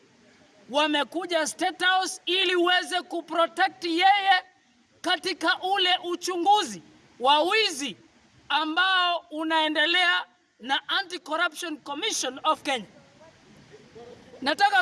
wamekuja State House ili uweze kuprotect yeye katika ule uchunguzi wa wizi ambao unaendelea na Anti-Corruption Commission of Kenya.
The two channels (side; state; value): both; identical; correlation 1.00